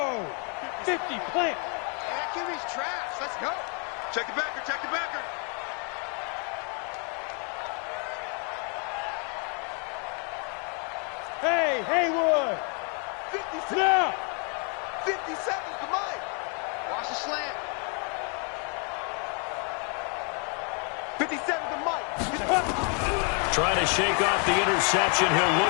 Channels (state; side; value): quieter; right; 38.1 dB